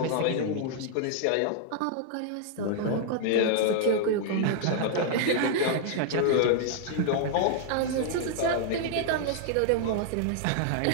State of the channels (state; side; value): different; both; correlation -0.01